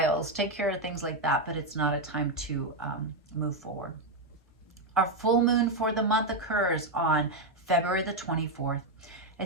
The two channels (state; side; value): normal; both; correlation 0.04